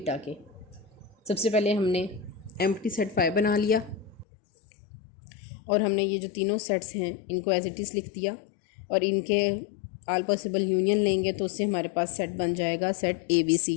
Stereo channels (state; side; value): drops out; right; at 4.2 s